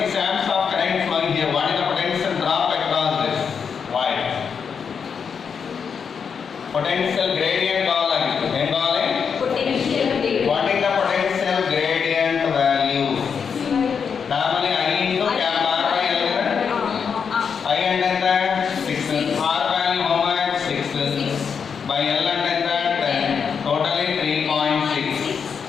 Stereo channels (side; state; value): right; quieter; 6.5 dB